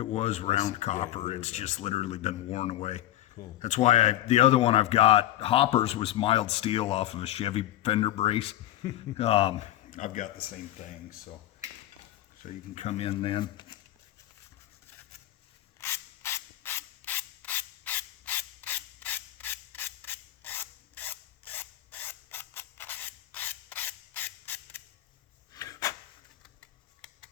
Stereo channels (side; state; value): right; quieter; 13.9 dB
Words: was round Yeah, copper. there It's we go. just literally been worn away. Cool. That's why the other one I've got, hoppers, was mild steel off of a Chevy fender brace. I've got the same thing, so you can come in then.